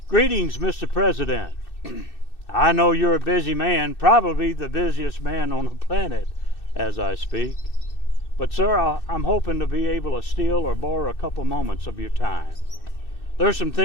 Greetings, Mr. President. I know you're a busy man, probably the busiest man on the planet as I speak. But sir, I'm hoping to be able to steal or borrow a couple moments of your time. There's some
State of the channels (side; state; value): right; late; 2.6 ms